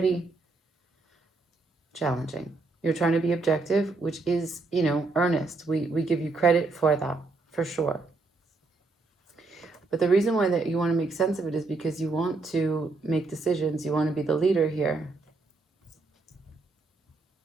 challenging. You're trying to be objective, which is, earnest. We give you credit for that, for sure. But the reason why that you want to make sense of it is because you want to make decisions. You want to be the leader here.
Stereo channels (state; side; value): quieter; left; 3.5 dB